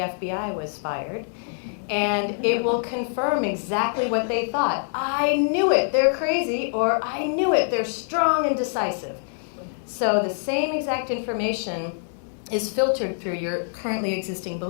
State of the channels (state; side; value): silent; right; digital silence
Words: was fired, and it will confirm exactly what they thought. I knew it, they're crazy, or I knew it, they're strong and decisive. So the same exact information is filtered through your currently existing